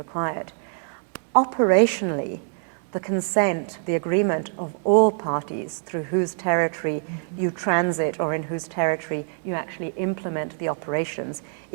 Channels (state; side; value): silent; left; 58 dB below the other